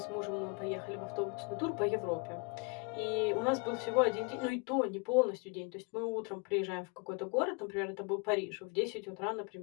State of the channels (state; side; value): quieter; right; 32.3 dB